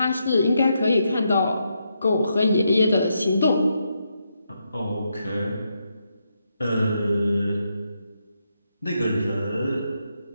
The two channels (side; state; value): both; inverted; correlation -0.81